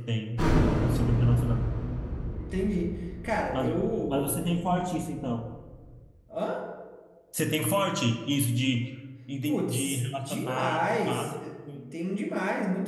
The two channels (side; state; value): both; identical; correlation 1.00